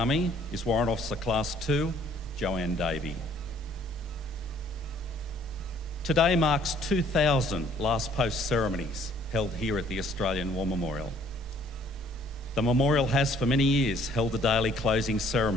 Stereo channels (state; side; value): normal; both; correlation 0.60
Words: is Warrant Officer Class 2, Joanne Davey. Today marks 2,000 Last Post ceremonies held here at the Australian War Memorial. The memorial has for many years held a daily closing